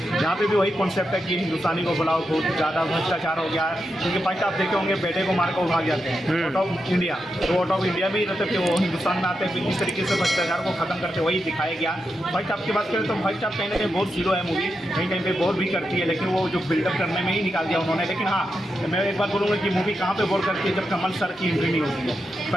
यहाँ पे भी वही कॉन्सेप्ट है कि हिंदुस्तानी को बुलाओ, बहुत ज़्यादा भ्रष्टाचार हो गया है। क्योंकि फर्स्ट आप देखे होंगे बेटे को मार कर भाग जाते हैं आउट ऑफ इंडिया, तो आउट ऑफ इंडिया भी रहते थे वो हिंदुस्तान में आते हैं। इस तरीके से भ्रष्टाचार को ख़त्म करते वही दिखाया गया। फर्स्ट आपकी बात करें तो फर्स्ट आप कहीं ना कहीं बहुत जीरो है मूवी, कहीं कहीं पे बोर भी करती है, लेकिन वो जो बिल्डअप करने में ही निकाल दिया उन्होंने। लेकिन हाँ, मैं एक बात बोलूँगा कि मूवी कहाँ पे बोर करती है, जब कमल सर की एंट्री नहीं होती है।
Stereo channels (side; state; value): both; normal; correlation 0.87